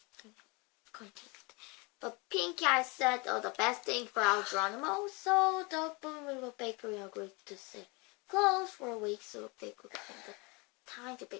But Pinky I said, the best thing for our Geronimo, so the little bakery agreed to say close for a week so they could have the time to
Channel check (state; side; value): quieter; right; 28.3 dB